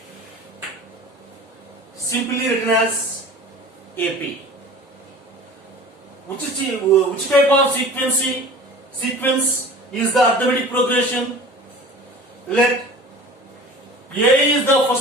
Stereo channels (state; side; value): normal; both; correlation 0.41